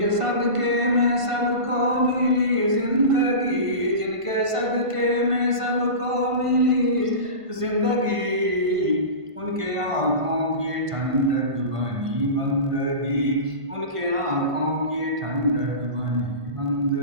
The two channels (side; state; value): left; late; 1.5 ms